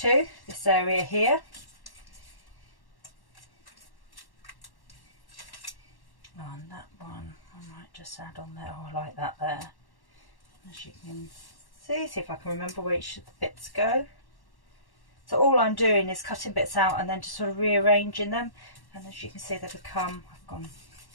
this area here. On that one, I might just add on there. Oh, I like that there. As you can see if I can remember where each of the bits go. So all I'm doing is cutting bits out and then just sort of rearranging them. And as you can see, they become, I've gone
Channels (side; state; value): right; late; 1.1 ms